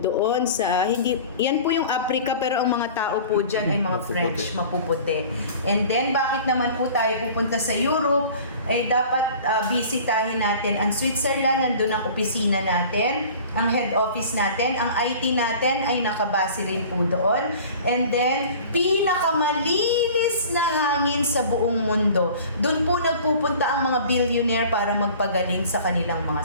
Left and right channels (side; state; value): both; inverted; correlation -0.44